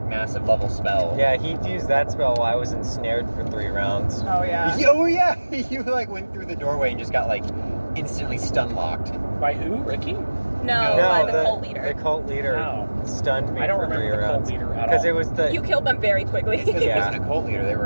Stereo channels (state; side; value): inverted; both; correlation -1.00